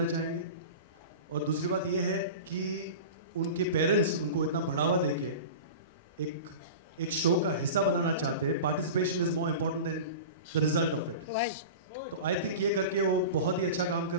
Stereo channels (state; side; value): inverted; both; correlation -0.31